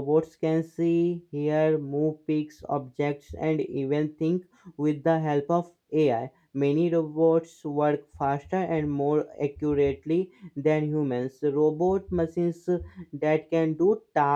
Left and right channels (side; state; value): both; identical; correlation 1.00